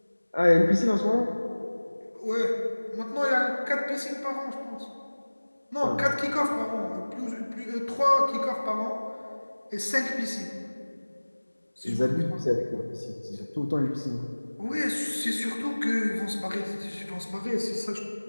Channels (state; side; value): inverted; both; correlation -1.00